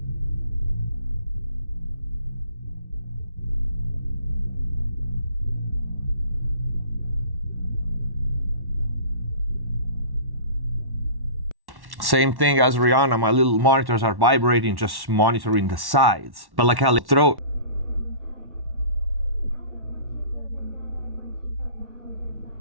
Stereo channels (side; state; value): left; late; 1.1 ms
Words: Same thing as Rihanna, my little monitors are vibrating, just monitoring the sides. But like how throat.